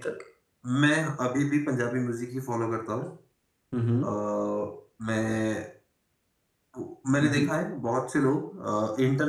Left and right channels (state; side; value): identical; both; correlation 1.00